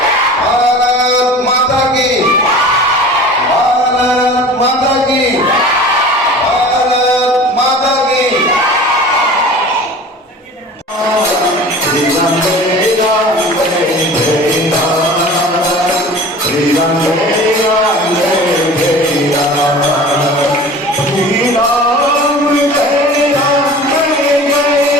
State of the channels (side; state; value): both; normal; correlation 0.40